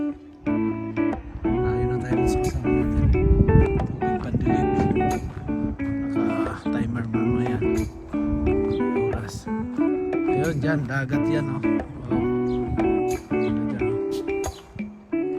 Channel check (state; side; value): identical; both; correlation 1.00